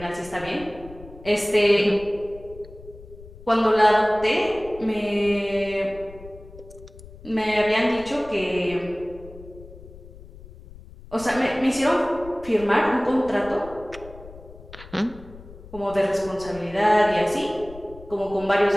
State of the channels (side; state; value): left; noise; rumble, 18 dB below the sound